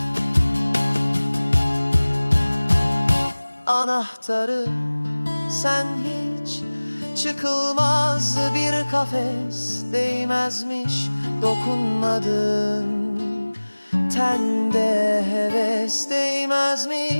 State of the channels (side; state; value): both; inverted; correlation -1.00